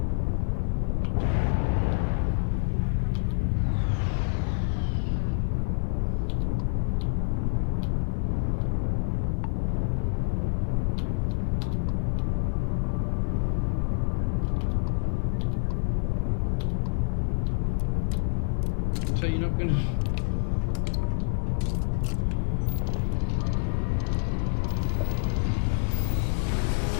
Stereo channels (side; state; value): right; silent; 60 dB below the other